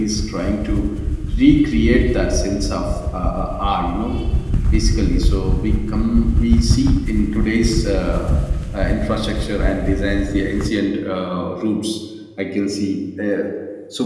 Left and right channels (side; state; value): both; identical; correlation 1.00